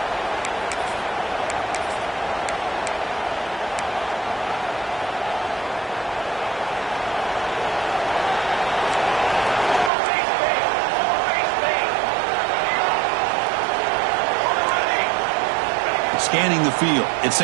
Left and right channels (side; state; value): left; drops out; at 9.9 s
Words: Scanning the field. It's